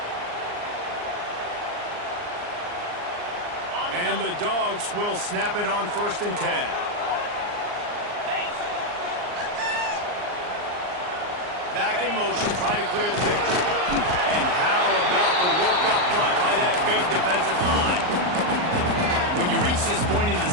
And the Dogs will snap it on 1st and 10. Back in motion, trying to clear the picture. And how about the work up front by that big defensive line? When you reach this point in the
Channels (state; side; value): late; left; 39 ms